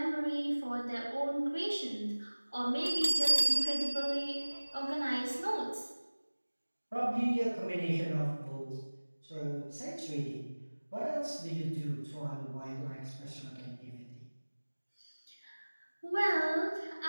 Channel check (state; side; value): inverted; both; correlation -1.00